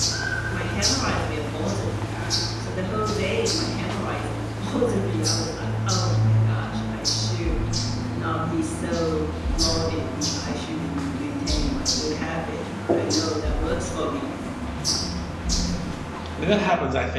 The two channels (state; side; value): identical; both; correlation 1.00